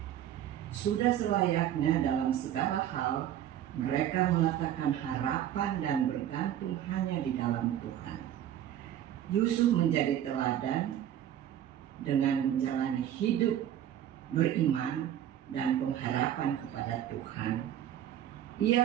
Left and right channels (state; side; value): quieter; left; 11.0 dB